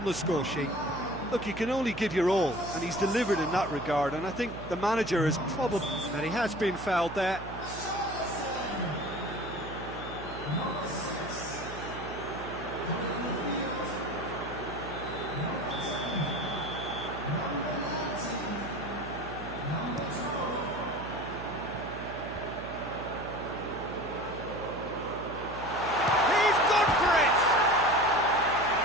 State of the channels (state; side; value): noise; right; hum, 11 dB below the sound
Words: the score sheet. Look, you can only give your all, and he's delivered in that regard, and I think the manager is probably... And he has been fouled there.